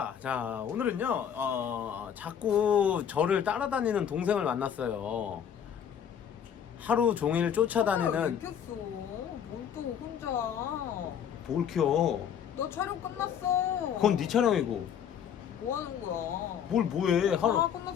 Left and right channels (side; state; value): right; quieter; 8.5 dB